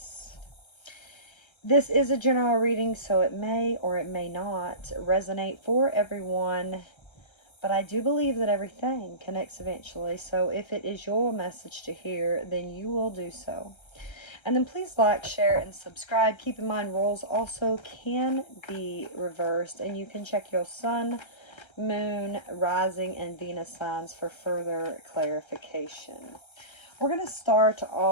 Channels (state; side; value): late; right; 1.3 ms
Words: This is a general reading, so it may or it may not resonate for everyone, but I do believe that everything connects eventually, so if it is your message to hear, then you will do so. And then please like, share, and subscribe. Keep in mind, roles also can be reversed, and you can check your sun, moon, rising, and Venus signs for further clarification. We're going to start